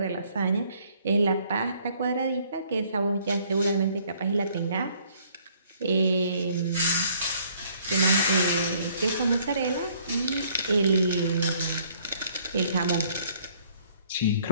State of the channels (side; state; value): both; inverted; correlation -0.62